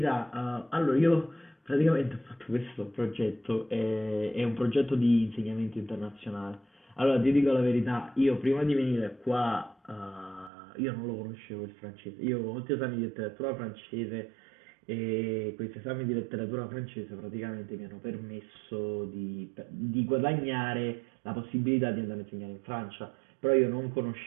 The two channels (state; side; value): drops out; left; at 10.5 s